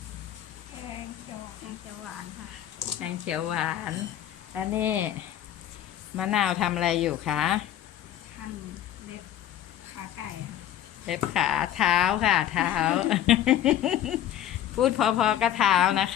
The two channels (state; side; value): quieter; right; 11.5 dB